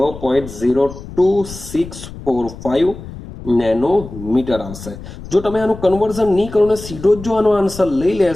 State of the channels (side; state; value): left; noise; rumble, 13 dB below the sound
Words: નેનોમીટર આવશે. જો તમે આનું કન્વર્ઝન નહીં કરો ને સીધો જ જો આનો આન્સર લઈ